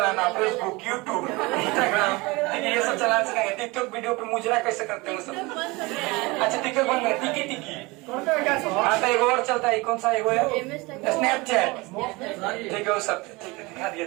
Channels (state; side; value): quieter; left; 24.0 dB